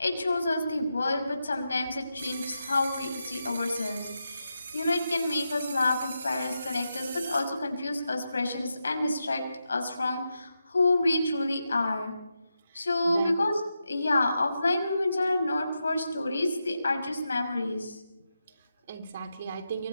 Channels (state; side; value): inverted; both; correlation -0.87